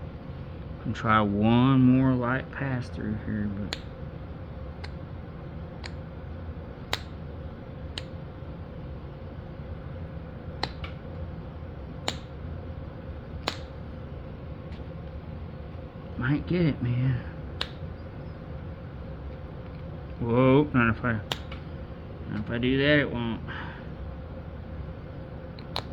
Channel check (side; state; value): both; identical; correlation 1.00